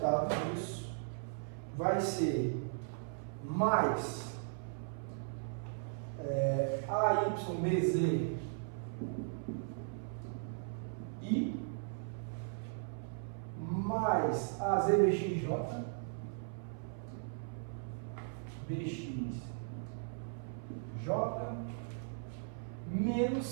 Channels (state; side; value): silent; left; 53 dB below the other